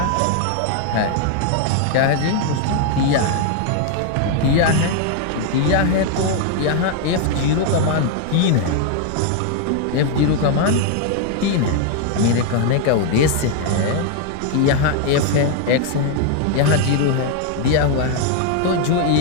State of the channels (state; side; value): different; both; correlation 0.00